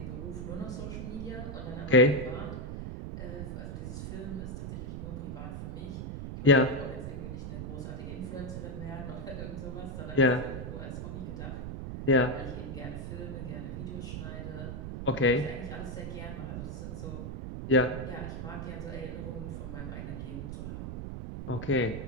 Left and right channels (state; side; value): noise; right; rumble, 6 dB below the sound